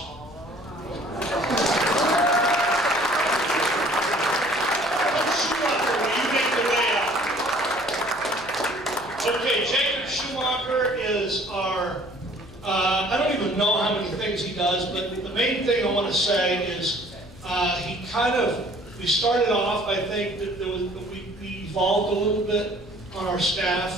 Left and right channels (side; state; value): left; noise; hum, 22 dB below the sound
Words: Okay, Jacob Schumacher is our, I don't even know how many things he does, but the main thing I want to say is he kind of, we started off, I think, that we evolved a little bit on our